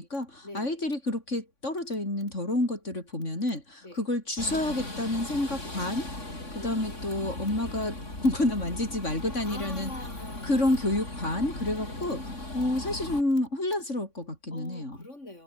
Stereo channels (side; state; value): right; late; 3.6 ms